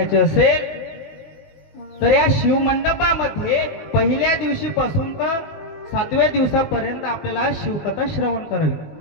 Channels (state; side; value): late; right; 19 ms